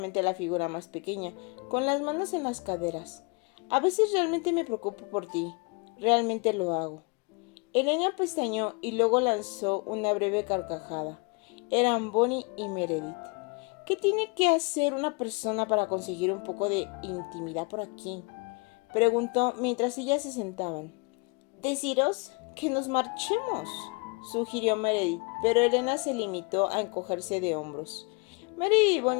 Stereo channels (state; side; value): quieter; right; 31.5 dB